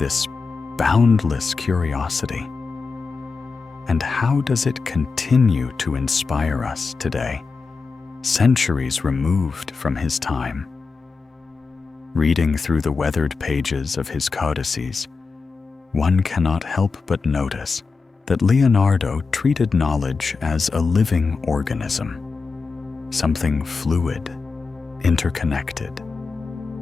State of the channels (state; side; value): quieter; right; 4.6 dB